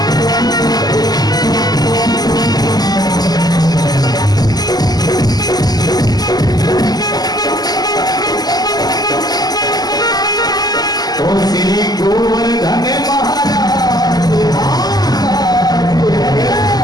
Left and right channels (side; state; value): right; late; 0.19 ms